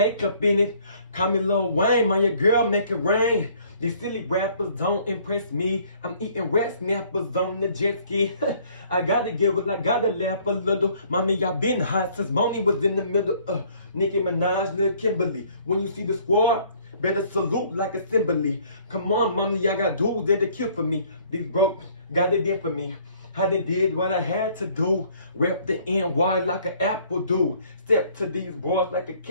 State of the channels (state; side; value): inverted; both; correlation -0.60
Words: up in it. Call me Lil Wayne, man, your girl make it rain. These silly rappers don't impress me. I'm eating rat snappers on the jet ski. I gotta giggle, I gotta laugh a little. Mommy, I been hot since Bonnie was in the middle. Nicki Minaj, Lil Kimberly. When you see the squad, better salute like assembly. Come on, mommy, I got dudes that they kill for me. These broke got it in for me. How they did what I had to do. Rep the NY like an apple do. Step to these boys like a